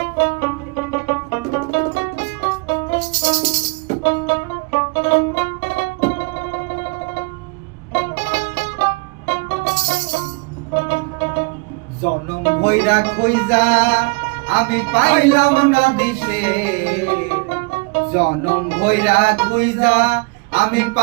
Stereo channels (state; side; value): quieter; left; 29.1 dB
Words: ভৈরা খইজা আমি পাইলাম না দিশে, জনম ভৈরা খুইজা আমি